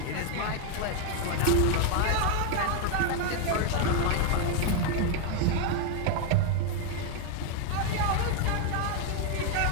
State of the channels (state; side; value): different; both; correlation 0.01